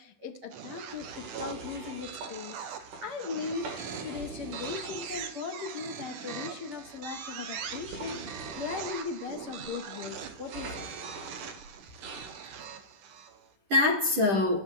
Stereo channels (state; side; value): late; left; 10 ms